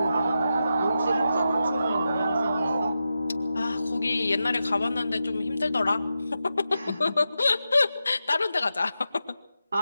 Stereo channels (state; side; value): inverted; both; correlation -0.89